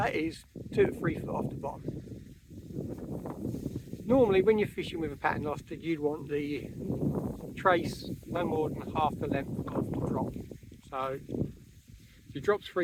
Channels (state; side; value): identical; both; correlation 1.00